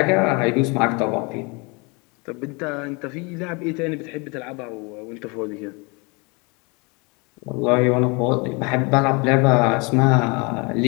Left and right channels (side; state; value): right; quieter; 29.5 dB